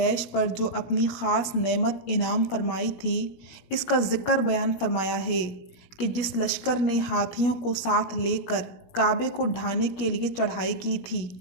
پر جو اپنی خاص نعمت انعام فرمائی تھی اس کا ذکر بیان فرمایا ہے کہ جس لشکر نے ہاتھیوں کو ساتھ لے کر کعبے کو ڈھانے کے لیے چڑھائی کی تھی،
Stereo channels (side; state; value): right; late; 17 ms